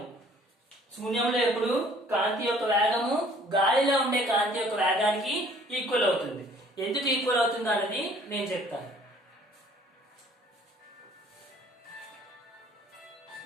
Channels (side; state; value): both; normal; correlation 0.56